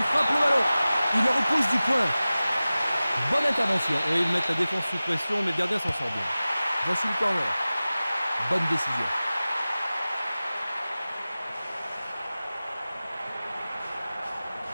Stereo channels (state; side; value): inverted; both; correlation -0.97